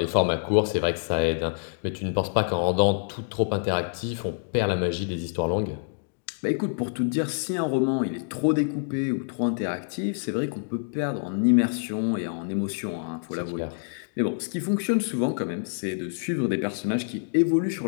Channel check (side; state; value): right; silent; digital silence